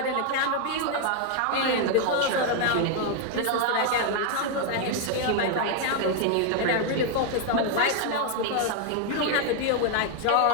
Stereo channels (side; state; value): both; different; correlation 0.00